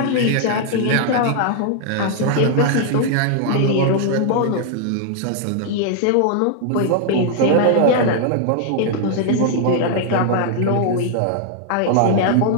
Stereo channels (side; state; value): both; different; correlation 0.00